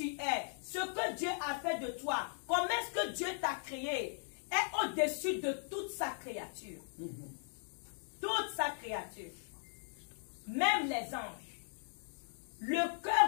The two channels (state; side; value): silent; right; digital silence